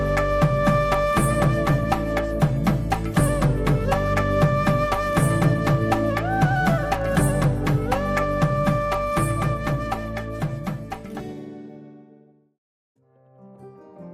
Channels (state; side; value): identical; both; correlation 1.00